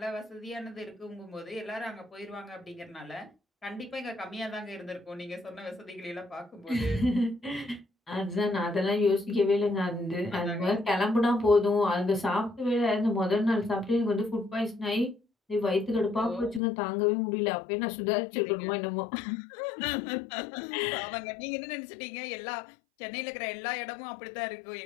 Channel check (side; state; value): right; drops out; at 16.6 s